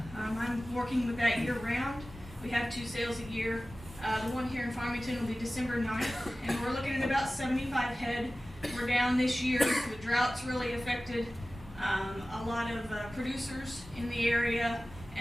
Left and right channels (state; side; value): normal; both; correlation 0.96